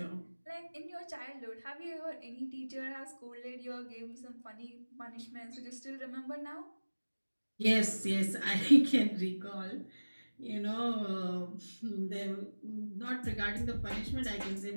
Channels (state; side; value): inverted; both; correlation -1.00